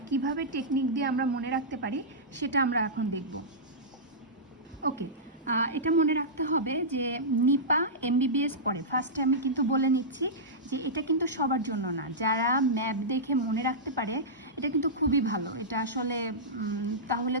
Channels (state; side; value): normal; both; correlation -0.14